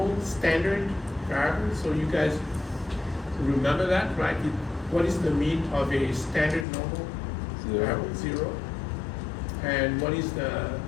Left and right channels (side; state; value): right; drops out; at 6.7 s